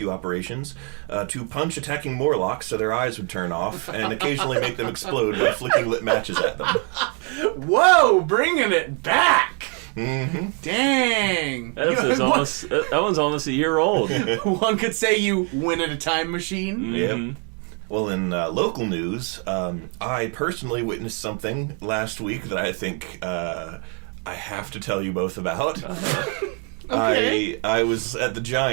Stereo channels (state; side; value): quieter; left; 37.3 dB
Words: operations to punch attacking Morlocks so their eyes would turn off and occasionally make them explode by flicking lit matches at them. Whoa, bringing it back! Mm-hmm. Dang! That one's almost a year old. One could say you win at a time machine. Mm-hmm. Yep. Well, in local news, I personally witnessed something last week that I think I have to tell you both about. Okay. I was at the